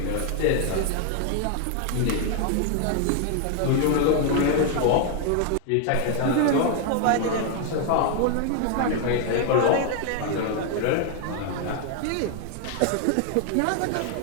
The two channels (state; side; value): different; both; correlation 0.00